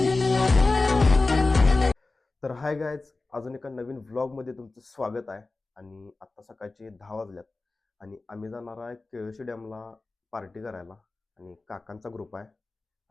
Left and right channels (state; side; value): quieter; right; 3.4 dB